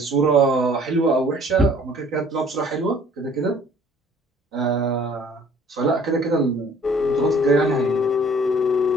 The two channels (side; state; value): both; normal; correlation 0.55